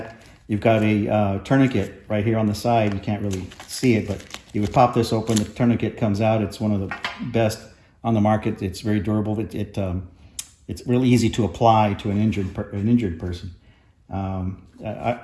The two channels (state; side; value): identical; both; correlation 1.00